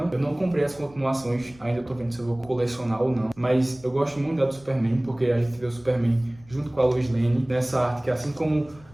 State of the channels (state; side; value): noise; left; rumble, 24 dB below the sound